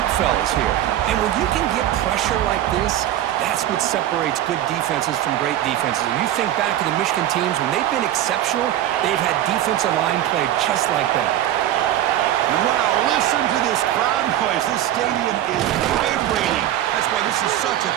fellas here? And when you can get pressure like this, that's what separates good defenses from great defenses. And you think back to the Michigan teams, when they've been exceptional, they've had defensive line play just like that. Wow, listen to this crowd noise. This stadium is vibrating. That's why this is such a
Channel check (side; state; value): left; quieter; 12.5 dB